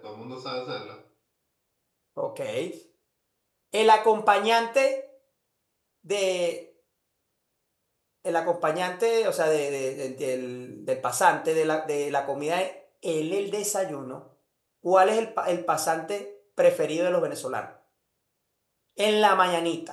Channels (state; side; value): identical; both; correlation 1.00